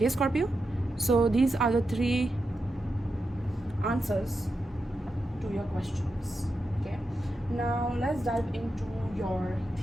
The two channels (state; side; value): normal; both; correlation 0.88